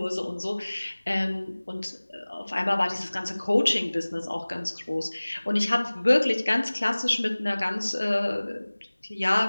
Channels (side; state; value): both; inverted; correlation -1.00